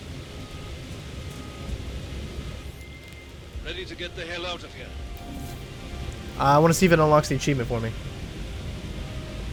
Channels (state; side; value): identical; both; correlation 1.00